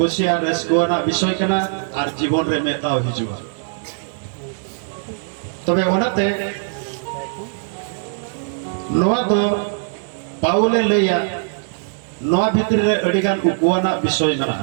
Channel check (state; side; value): silent; left; digital silence